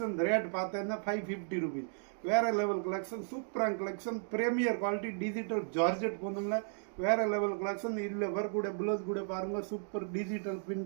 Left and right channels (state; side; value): silent; left; digital silence